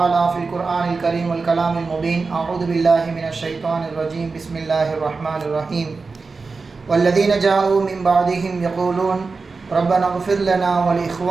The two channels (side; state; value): left; quieter; 4.3 dB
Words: في القرآن الكريم والكلام المبين أعوذ بالله من الشيطان الرجيم بسم الله الرحمن الرحيم والذين جاءوا من بعدهم يقولون ربنا اغفر لنا